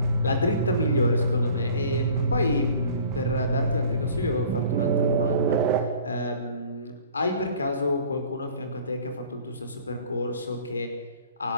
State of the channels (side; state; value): both; inverted; correlation -0.50